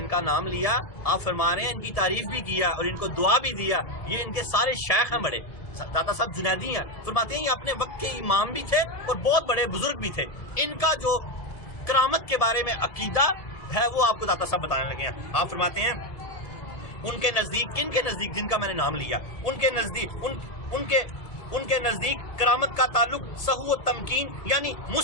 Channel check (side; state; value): right; late; 1.7 ms